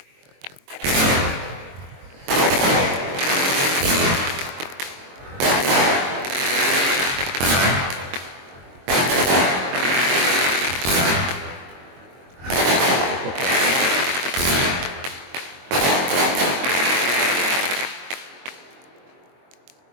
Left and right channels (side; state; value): left; late; 22 ms